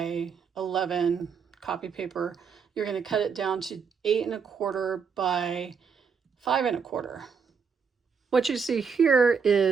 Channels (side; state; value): left; quieter; 6.1 dB